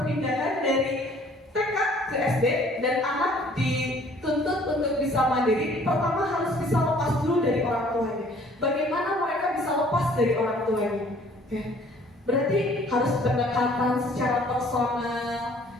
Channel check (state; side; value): normal; both; correlation 0.56